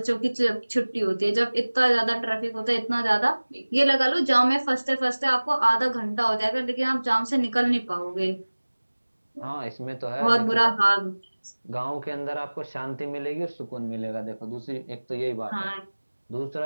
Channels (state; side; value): inverted; both; correlation -1.00